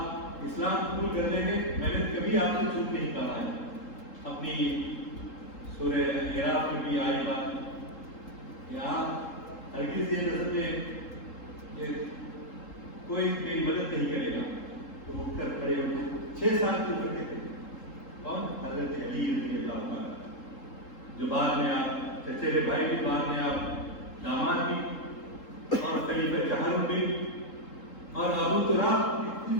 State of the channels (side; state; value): right; late; 3.8 ms